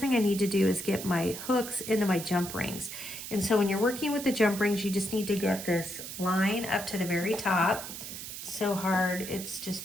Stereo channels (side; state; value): right; noise; hiss, 9 dB below the sound